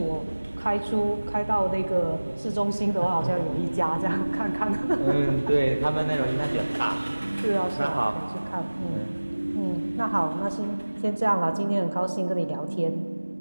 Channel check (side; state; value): both; inverted; correlation -1.00